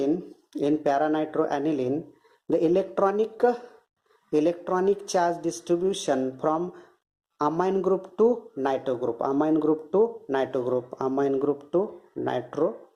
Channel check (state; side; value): identical; both; correlation 1.00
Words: the electronic charge distribution from amine group to nitro